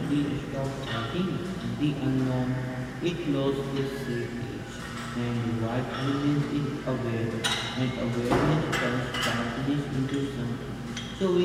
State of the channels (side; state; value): both; identical; correlation 1.00